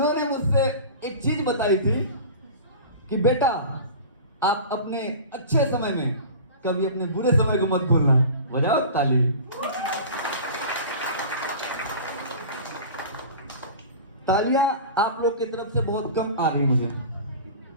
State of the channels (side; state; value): both; inverted; correlation -0.36